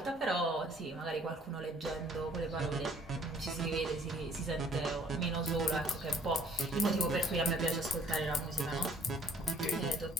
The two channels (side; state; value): both; normal; correlation 0.57